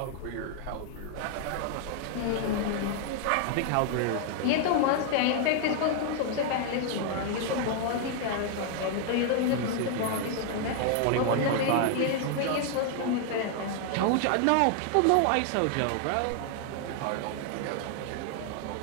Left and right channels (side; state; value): both; different; correlation 0.00